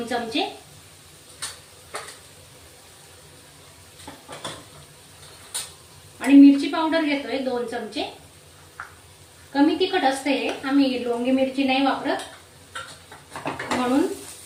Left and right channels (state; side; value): identical; both; correlation 1.00